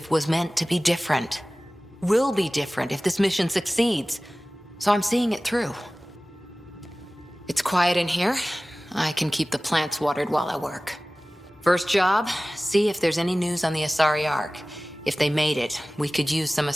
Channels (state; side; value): normal; both; correlation 0.98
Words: was meant to be different. Will be different if this mission succeeds. So I'm seeing it through. It's quiet in here. I can keep the plants watered while I work. First job, see if there's any news on the Asari Ark. If they made it, we could use some